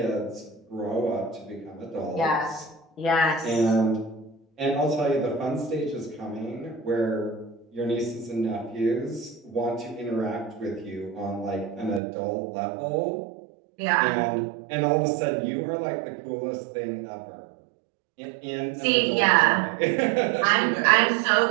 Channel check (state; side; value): drops out; left; at 12.0 s